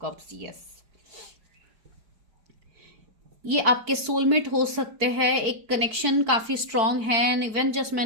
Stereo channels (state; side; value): late; left; 4.5 ms